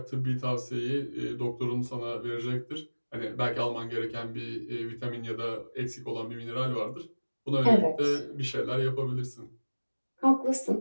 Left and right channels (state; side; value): inverted; both; correlation -1.00